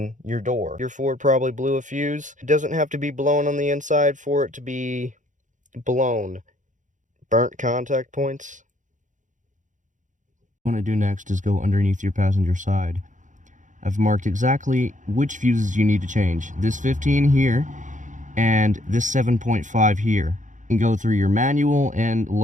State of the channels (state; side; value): late; left; 0.36 ms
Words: your door. Your Ford probably blew a fuse. It doesn't have to be blown on the inside for it to be blown. Burnt contact points. What I want to do next is go underneath your passenger side. I've marked exactly which fuses you need to change. This 15 here and this 7.5 here. You can go through your manual and